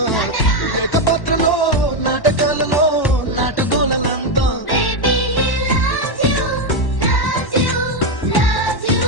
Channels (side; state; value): right; late; 1.1 ms